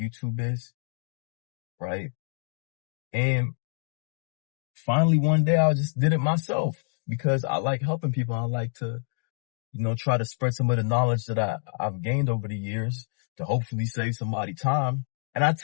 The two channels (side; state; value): right; silent; 60 dB below the other